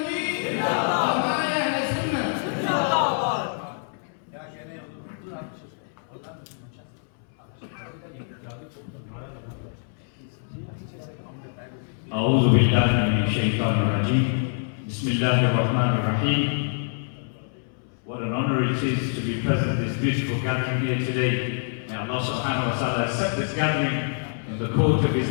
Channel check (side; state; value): right; silent; 61 dB below the other